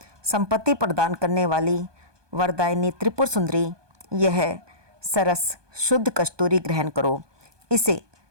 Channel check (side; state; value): left; late; 1.2 ms